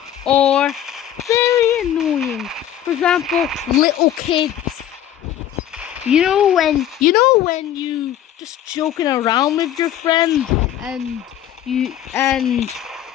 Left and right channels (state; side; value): quieter; right; 11.0 dB